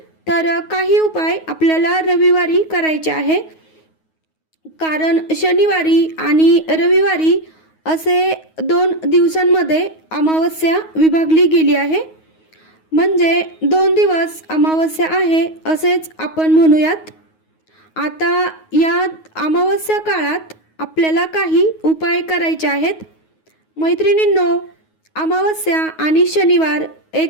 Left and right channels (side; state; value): right; late; 9.4 ms